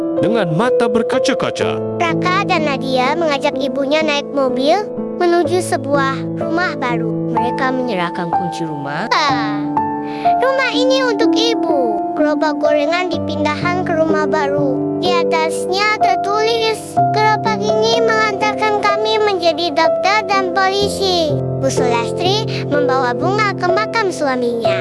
dengan mata berkaca-kaca. Raka dan Nadia mengajak ibunya naik mobil menuju sebuah rumah baru. Mereka menyerahkan kunci rumah. Rumah ini untuk ibu. Gerobak gorengan dipindahkan ke rumah baru. Di atasnya tertulis, gerobak ini mengantarkan kami menjadi dokter dan polisi. Bu Sulastri membawa bunga ke makam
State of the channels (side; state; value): both; identical; correlation 1.00